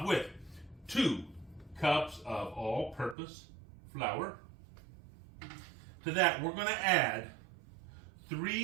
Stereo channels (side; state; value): left; drops out; at 3.2 s